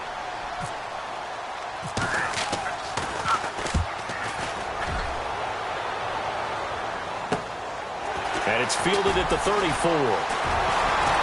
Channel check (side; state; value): both; identical; correlation 1.00